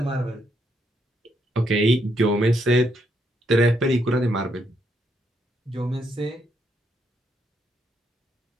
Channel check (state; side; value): normal; both; correlation 0.76